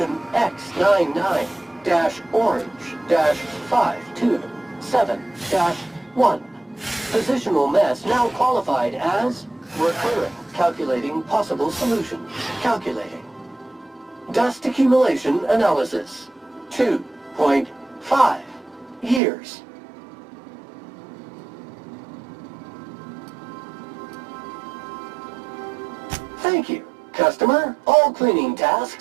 X99-orange-527-1. Positional mass now qualified as recurring. Calculating possible solutions. Calculating. Dust accumulation analysis. 2.5 years. Thank you. Customer, all cleaning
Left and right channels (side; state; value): left; drops out; at 19.2 s